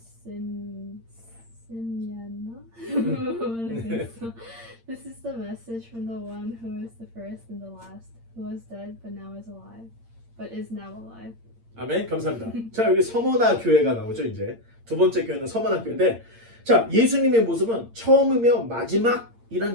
Smyrna. This is the message from the one who is the first and the last, who was dead but is now alive. 아멘. 감사합니다. 자, 여기 서머나 교회가 나오죠. 이제 두 번째 교회는 서머나 교회인데, 자, 예수님의 모습은 처음이며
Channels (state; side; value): late; left; 8.7 ms